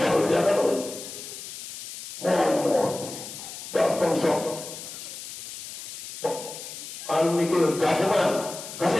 dia kalau mohon datang sok anu mikir gabungan kasih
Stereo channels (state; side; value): noise; left; hiss, 10 dB below the sound